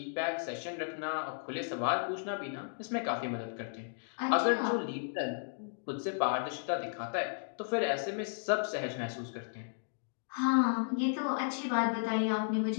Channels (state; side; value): silent; right; digital silence